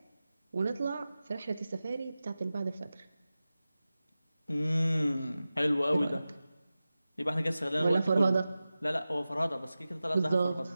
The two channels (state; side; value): inverted; both; correlation -0.95